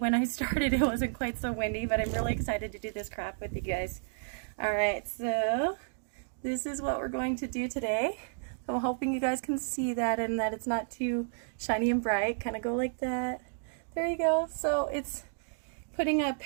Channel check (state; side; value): silent; left; digital silence